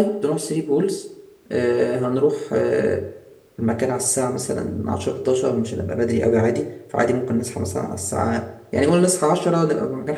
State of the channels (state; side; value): identical; both; correlation 1.00